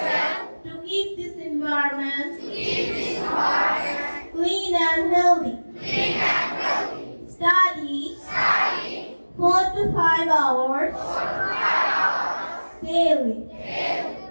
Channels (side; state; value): both; inverted; correlation -1.00